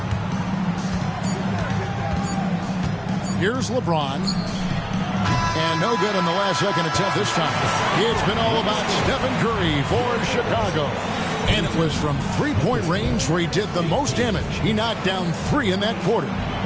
Here's LeBron. And no good in the last second attempt this time. It's been all about Stephen Curry for Chicago. And it was from three-point range where he did the most damage. He knocked down 3 in that quarter.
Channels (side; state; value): both; identical; correlation 1.00